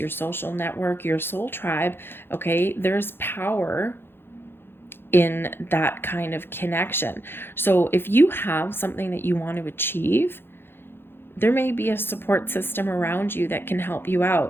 social network, your soul tribe. Okay, there's power in that kind of connection. So if you have something that you want to achieve, there may be a support system around you that can help you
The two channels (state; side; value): late; right; 0.10 ms